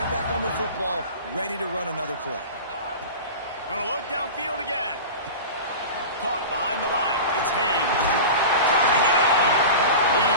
back on the football, ready to run another play. Gonna look downfield again. Caught behind the line. It's Haynes. Turning it on.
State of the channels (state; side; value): inverted; both; correlation -0.31